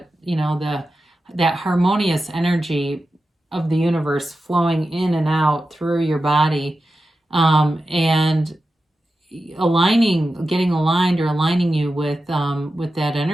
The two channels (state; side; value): normal; both; correlation 0.92